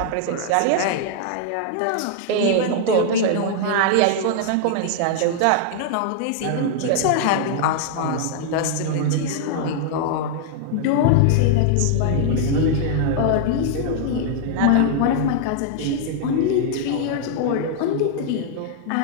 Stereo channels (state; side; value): different; both; correlation -0.01